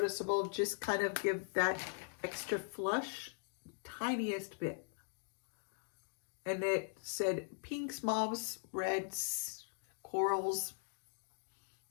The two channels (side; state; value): right; silent; digital silence